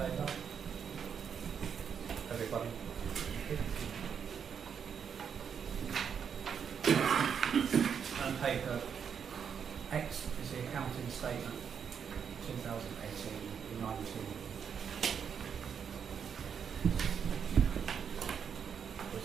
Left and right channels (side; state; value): left; quieter; 7.3 dB